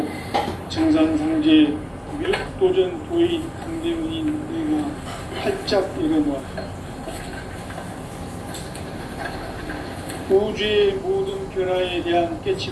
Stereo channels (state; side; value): identical; both; correlation 1.00